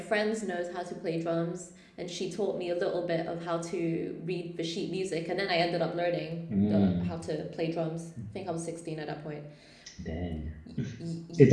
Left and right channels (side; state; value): both; identical; correlation 1.00